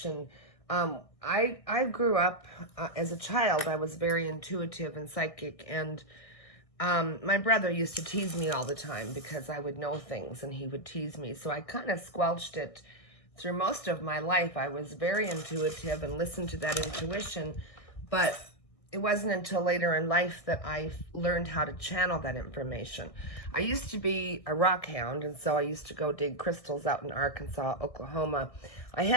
I grew up as a child. I was very intuitive and psychic, and my brother used to tease me all the time because I would know things and he would tease me. So I kind of squelched it through most of my life. I was very intuitive and listened to that intuition, but it wasn't until later in life that I learned how to channel that information. I used to be a rock hound, and so I used to go dig crystals out in Arkansas, Oklahoma. I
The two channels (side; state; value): right; late; 1.6 ms